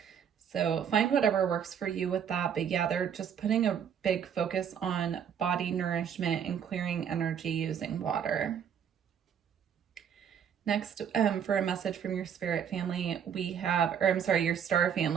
So find whatever works for you with that. But yeah, they're just putting a big focus on body nourishment and clearing energy using water. Next, for a message from your spirit family, we have, or I'm sorry, your star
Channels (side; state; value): left; quieter; 8.1 dB